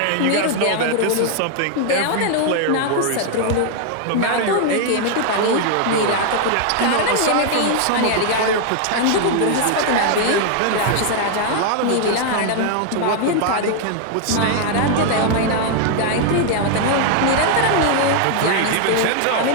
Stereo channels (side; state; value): both; different; correlation 0.00